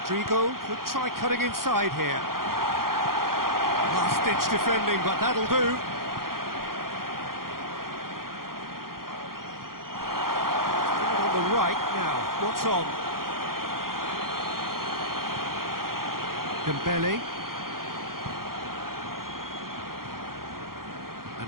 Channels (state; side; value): late; left; 0.92 ms